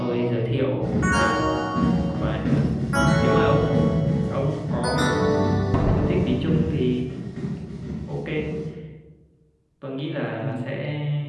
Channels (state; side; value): identical; both; correlation 1.00